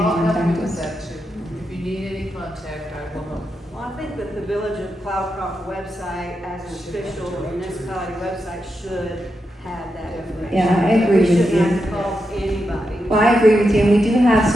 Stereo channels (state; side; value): normal; both; correlation 0.86